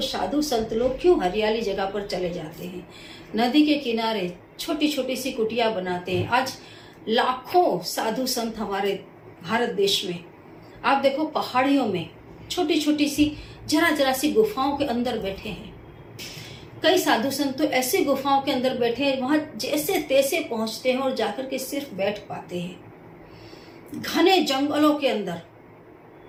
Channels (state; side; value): identical; both; correlation 1.00